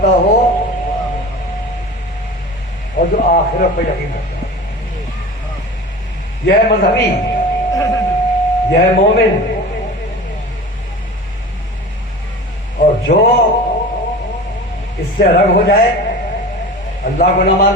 ہو، اور جو آخرت پہ یقین کرتا ہے۔ یہ ہے مذہبی، یہ ہے مومن۔ اور جو اس سے الگ ہو جائے، اللہ کو نہ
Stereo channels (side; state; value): both; normal; correlation 0.35